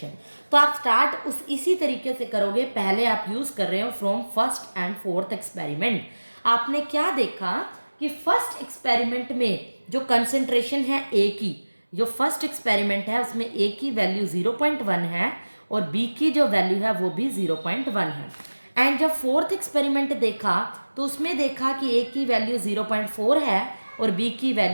तो आप स्टार्ट इसी तरीके से करोगे। पहले आप यूज कर रहे हो from first and fourth experiment. आपने क्या देखा कि फर्स्ट एक्सपेरिमेंट में जो कंसंट्रेशन है A की, जो फर्स्ट एक्सपेरिमेंट है उसमें A की वैल्यू 0.1 है और B की जो वैल्यू है वो भी 0.1 है। एंड जब फोर्थ एक्सपेरिमेंट देखा तो उसमें देखा कि A की वैल्यू 0.4 है और B की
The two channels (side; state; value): both; inverted; correlation -1.00